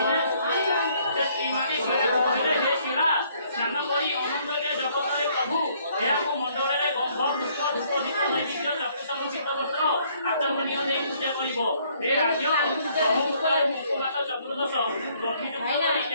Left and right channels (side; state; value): both; inverted; correlation -0.64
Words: ସେ ସ୍ତ୍ରୀମାନେ ଶିଳାକୁ କହିଲେ ହେ ଶିଳା, ସ୍ନାନ କରି ଅନନ୍ତକେ ଜଗତରେ ପ୍ରଭୁ ଏହାକୁ ମଣ୍ଡଳରେ ଗନ୍ଧ ପୁଷ୍ପ ଧୂପ ଦୀପ ନୈବେଦ୍ୟ ଚତୁର୍ସମୁଚିତ ବସ୍ତ୍ର ଆଚମନୀୟ ଦେଇ ପୂଜା କରିବ। ହେ ରାଜ୍ୟ ବ୍ରହ୍ମପୁତ୍ର ମୁଖପାତ ଚତୁର୍ଦଶ ଗଣ୍ଠିଯୁକ୍ତ କରି